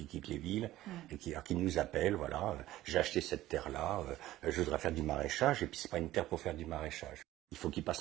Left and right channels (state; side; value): quieter; left; 15.3 dB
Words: quittent les villes et qui nous appellent, voilà, j'ai acheté cette terre-là, je voudrais faire du maraîchage, et puis c'est pas une terre pour faire du maraîchage. Il faut qu'ils